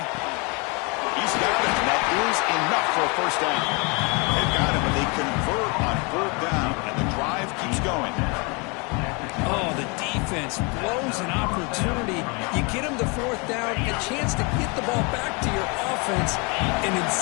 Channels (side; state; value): right; quieter; 30.8 dB